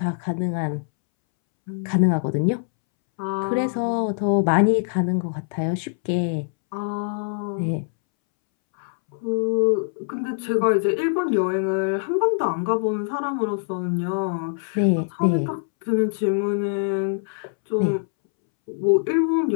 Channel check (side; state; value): right; silent; 63 dB below the other